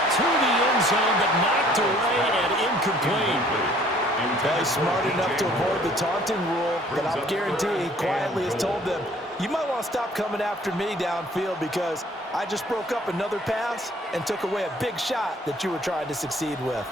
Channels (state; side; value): normal; both; correlation 0.57